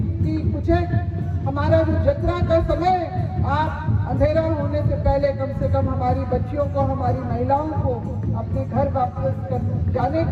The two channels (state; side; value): identical; both; correlation 1.00